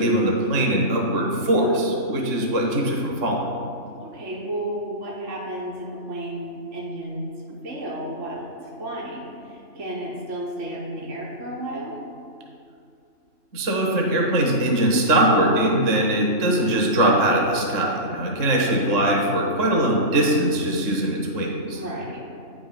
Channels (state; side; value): late; left; 3.6 ms